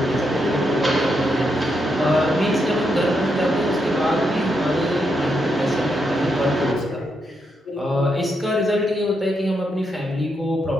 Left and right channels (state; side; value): normal; both; correlation 0.81